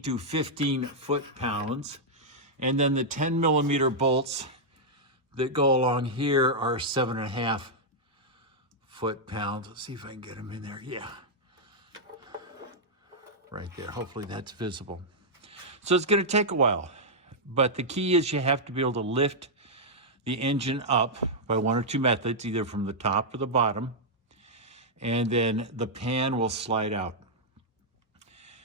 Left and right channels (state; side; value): normal; both; correlation -0.06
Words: 15 foot-pounds. And then the 10mm bolts that go along here are 7.5 foot-pounds. Let's see if I can get them in there. Yeah. Right there. Hopefully that's visible. So it's going to take a while. But the key is you have to be able to lift the engine up by one or two methods, either from the top or the bottom, and then the pan will slide out.